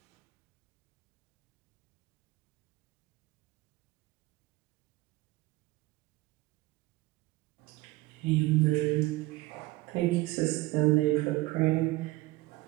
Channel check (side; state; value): left; quieter; 20.1 dB